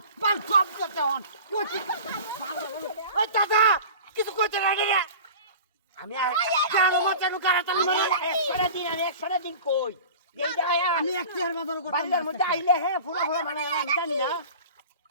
পান সব করতে হন ওই দাদা কিছু করতে রাখে রে আমি কেন মাচানো কারাতালি মারে 100 দিন কই এই যায় আমি এক চেয়ার বাজার করতে বাড়ির মধ্যে আইলে হ্যাঁ ফুলা মানে আমি জানি না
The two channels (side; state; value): both; inverted; correlation -0.38